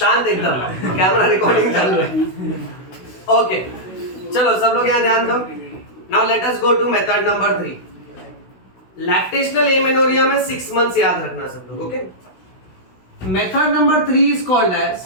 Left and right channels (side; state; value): right; late; 16 ms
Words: एकदम, कैमरा रिकॉर्डिंग चल रहा है। ओके चलो सब लोग यहाँ ध्यान दो। Now let us go to method number 3। Lactational amenorrhea में 6 मंथ्स याद रखना सब लोग। Okay, method number 3 is called as